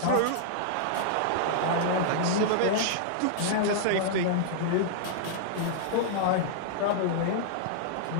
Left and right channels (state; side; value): different; both; correlation -0.01